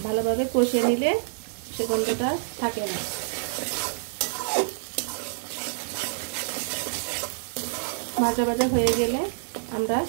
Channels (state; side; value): silent; left; 60 dB below the other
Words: ভালোভাবে কষিয়ে নিলে সে গন্ধটা থাকে না। ভাজা ভাজা হয়ে গেলে আমরা